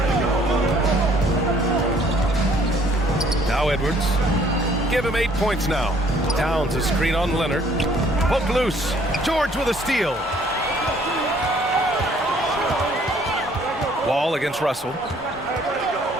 Now Edwards. Give him 8 points now. Towns a screen on Leonard. Poked loose. George with a steal. Wall against Russell.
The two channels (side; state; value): both; normal; correlation 0.60